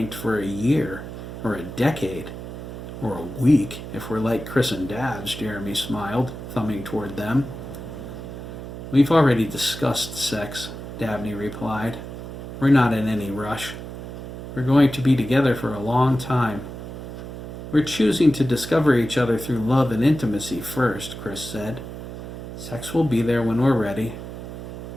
for a year, or a decade, or a week, if we're like Chris and Dabs, Jeremy smiled, thumbing toward them. We've already discussed sex, Dabney replied. We're not in any rush. We're going to be together for a long time. We're choosing to discover each other through love and intimacy first, Chris said. Sex will be there when we're ready.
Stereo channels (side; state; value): right; noise; hum, 10 dB below the sound